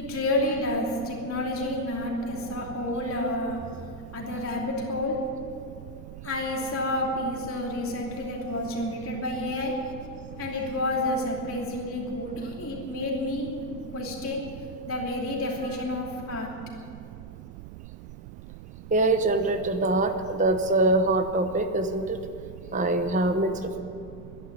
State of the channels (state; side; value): noise; right; rumble, 13 dB below the sound